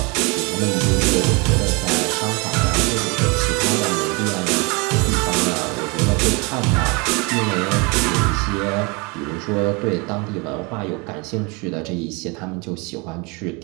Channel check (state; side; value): quieter; left; 28.9 dB